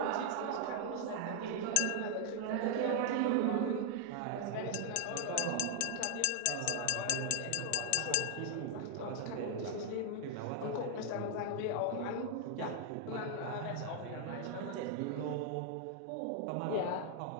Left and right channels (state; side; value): different; both; correlation 0.00